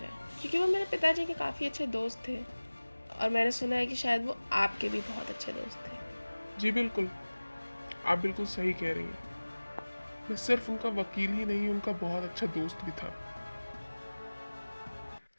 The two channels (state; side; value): inverted; both; correlation -1.00